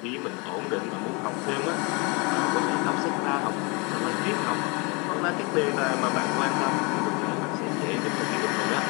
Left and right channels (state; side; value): quieter; right; 29.6 dB